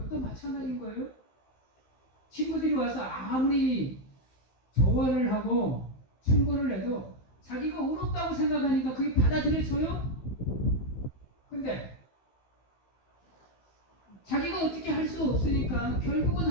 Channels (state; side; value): late; right; 15 ms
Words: 또 마찬가지인 거예요. 친구들이 와서 아무리 조언을 하고 충고를 해도 자기가 옳았다고 생각하니까 그게 받아들여져요? 근데 자기가 어떻게 할 수 없으니까 결국은